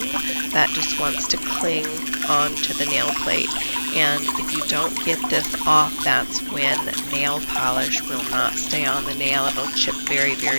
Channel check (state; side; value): inverted; both; correlation -1.00